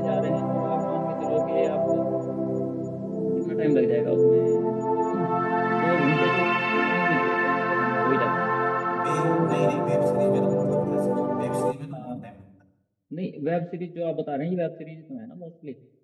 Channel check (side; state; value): both; identical; correlation 1.00